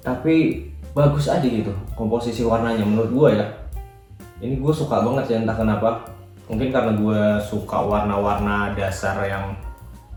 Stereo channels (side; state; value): both; identical; correlation 1.00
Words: tapi bagus aja gitu komposisi warnanya menurut gue ya. Ini gue suka banget ya, entah kenapa, mungkin karena gue suka warna-warna dasar yang